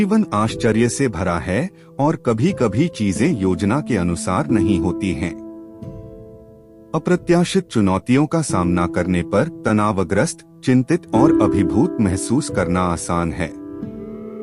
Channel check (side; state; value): both; identical; correlation 1.00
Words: आश्चर्य से भरा है और कभी कभी चीजें योजना के अनुसार नहीं होती हैं। अप्रत्याशित चुनौतियों का सामना करने पर तनावग्रस्त, चिंतित और अभिभूत महसूस करना आसान है।